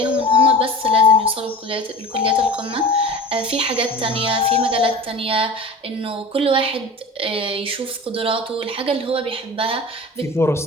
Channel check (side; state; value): both; normal; correlation 0.36